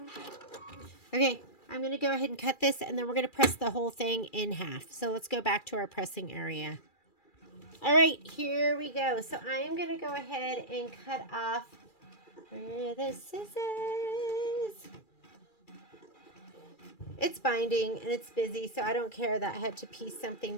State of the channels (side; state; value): right; late; 2.3 ms